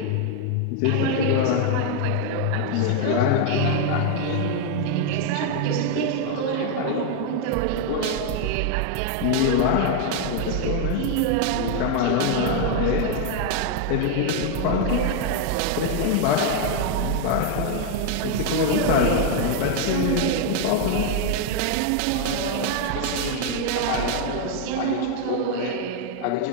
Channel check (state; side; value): different; both; correlation 0.00